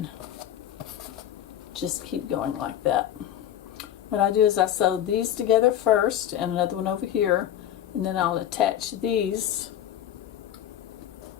just keep going like that. What I do is I sew these together first, and another one over here, and then I'll attach these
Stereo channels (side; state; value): right; quieter; 11.0 dB